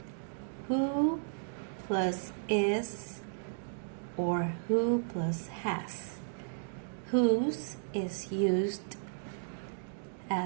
who plus is or who plus has. Whose is used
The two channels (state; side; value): silent; left; digital silence